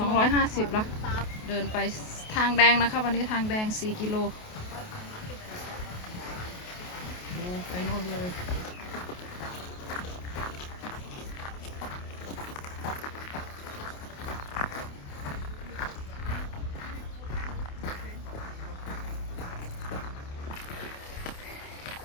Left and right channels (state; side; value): late; right; 28 ms